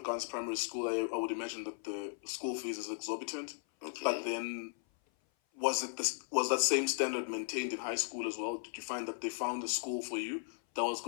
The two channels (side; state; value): right; silent; 53 dB below the other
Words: primary school, I would imagine that the school fees is exorbitant. Okay. But then, was that same standard maintained in high school as well? Did you find that they found a school for you that was